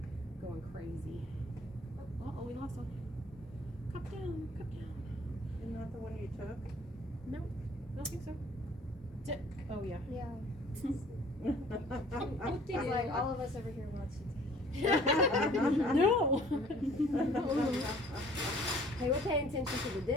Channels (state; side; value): normal; both; correlation 0.54